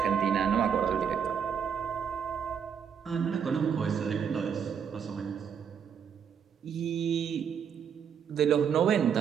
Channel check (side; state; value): left; quieter; 7.5 dB